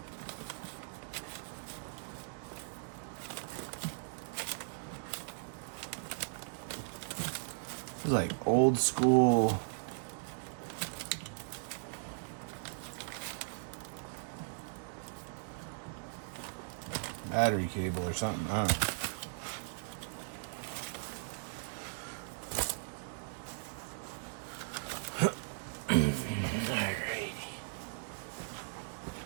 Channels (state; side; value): silent; left; digital silence